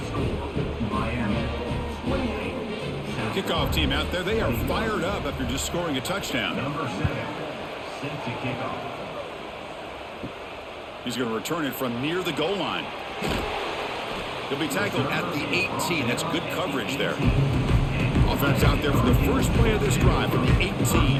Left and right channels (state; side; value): identical; both; correlation 1.00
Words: score Miami 28. Kickoff team out there. They are fired up after just scoring a touchdown. Number 7, set to kick off. He's going to return it from near the goal line. He'll be tackled at the 18. That's good coverage there. Offense out there for the first play of this drive from the 18.